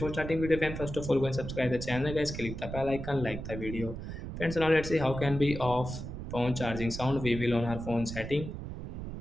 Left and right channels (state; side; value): noise; right; rumble, 8 dB below the sound